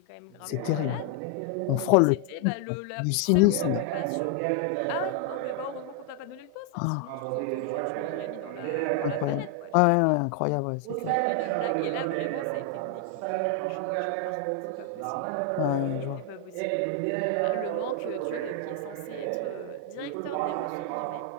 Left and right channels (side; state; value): both; different; correlation 0.00